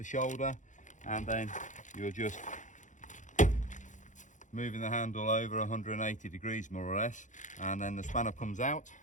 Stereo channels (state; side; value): late; right; 0.36 ms